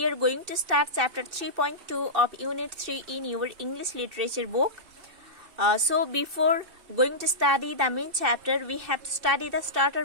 are going to start chapter 3.2 of unit 3 in your English literature book. So before going to study the main chapter, we have to study the starter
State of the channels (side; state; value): left; late; 2.6 ms